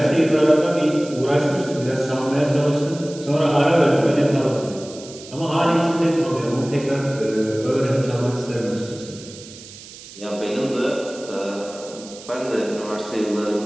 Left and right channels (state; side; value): noise; right; hiss, 17 dB below the sound